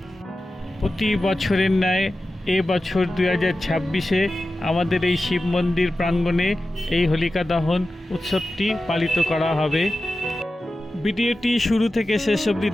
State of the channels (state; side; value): normal; both; correlation 0.93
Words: প্রতি বছরের ন্যায় এবছর 2026-এ আমাদের এই শিব মন্দির প্রাঙ্গণে এই হোলিকা দহন উৎসবটি পালিত করা হবে। ভিডিওটি শুরু থেকে শেষ অবধি